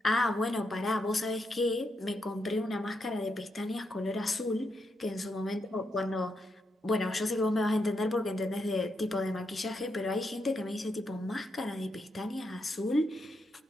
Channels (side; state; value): both; normal; correlation 0.82